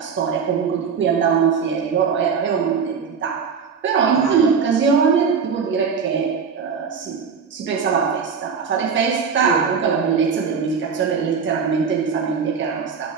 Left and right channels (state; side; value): quieter; left; 6.1 dB